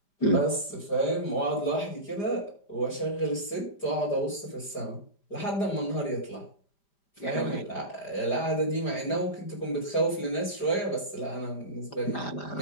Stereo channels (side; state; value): right; late; 4.9 ms